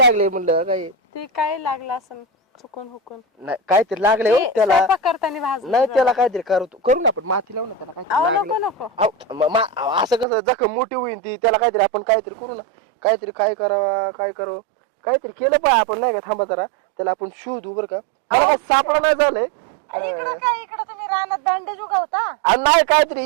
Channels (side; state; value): left; drops out; at 10.2 s